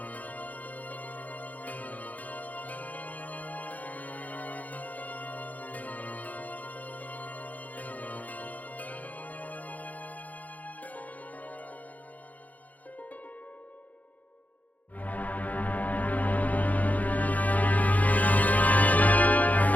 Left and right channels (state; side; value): late; right; 0.077 ms